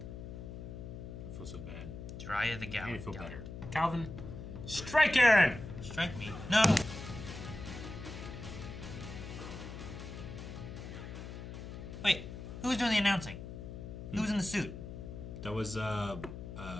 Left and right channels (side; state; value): left; noise; hum, 9 dB below the sound